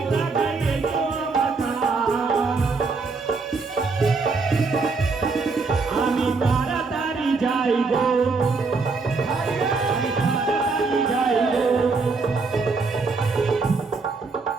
লাগাইয়ে কথা। আমি তাড়াতাড়ি যাইব, আমি তাড়াতাড়ি যাইব।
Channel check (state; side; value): quieter; left; 4.2 dB